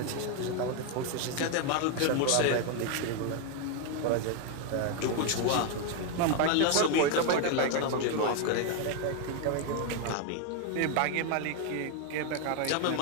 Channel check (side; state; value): both; different; correlation 0.01